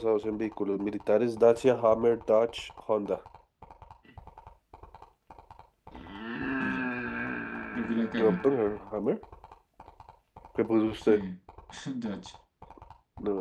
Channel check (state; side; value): identical; both; correlation 1.00